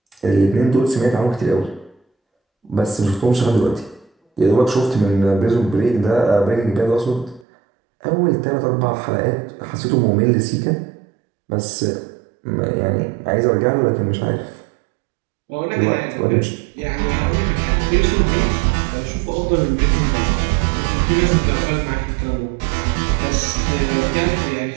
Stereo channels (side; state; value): left; drops out; at 7.5 s